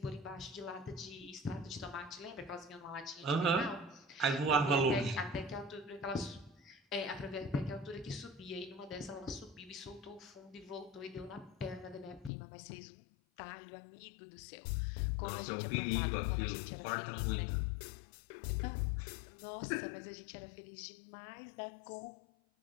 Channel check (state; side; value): drops out; right; at 12.3 s